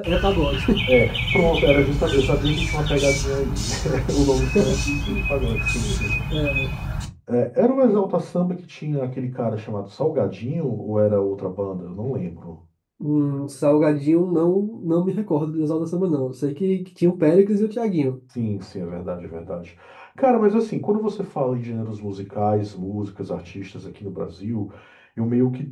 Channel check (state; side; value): identical; both; correlation 1.00